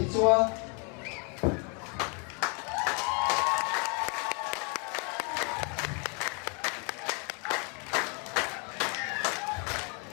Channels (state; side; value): quieter; right; 35.7 dB